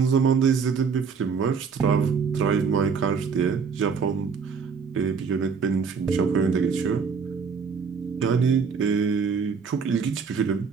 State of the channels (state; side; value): quieter; left; 5.8 dB